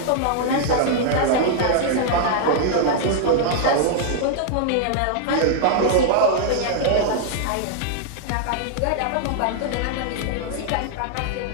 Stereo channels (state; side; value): different; both; correlation -0.01